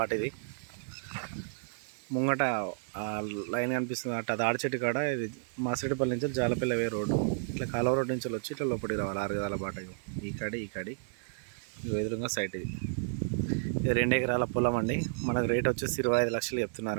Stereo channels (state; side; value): silent; left; 57 dB below the other